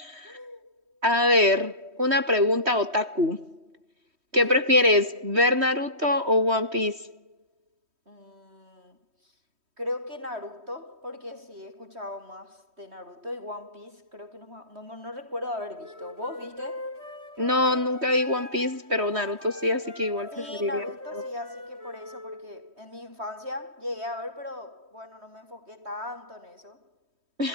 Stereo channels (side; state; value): left; late; 3.1 ms